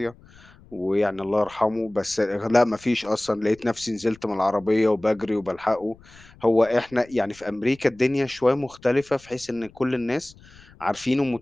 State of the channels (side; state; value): left; noise; rumble, 25 dB below the sound